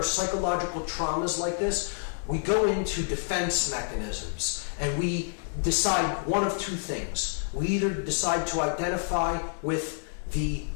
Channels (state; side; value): silent; right; digital silence